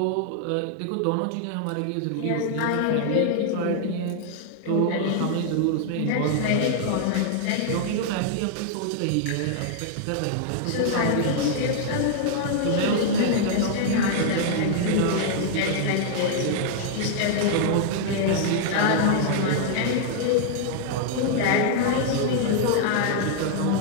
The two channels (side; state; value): both; different; correlation -0.01